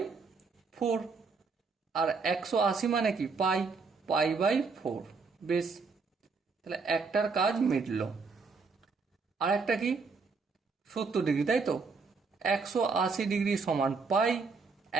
4। আর 180 মানে কি? পাই, পাই বাই 4। বেশ, তাহলে একটার কাজ মিটলো। আর একটা কি? 70 ডিগ্রি, তাই তো? 180 ডিগ্রি সমান পাই,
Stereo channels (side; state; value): left; quieter; 4.6 dB